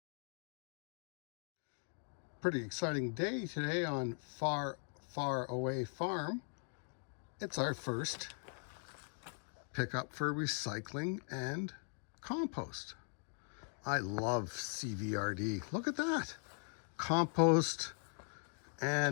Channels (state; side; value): silent; right; 51 dB below the other